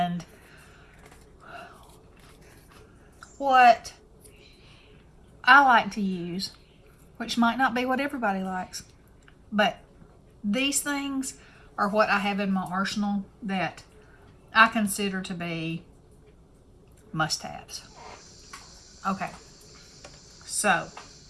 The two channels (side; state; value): both; identical; correlation 1.00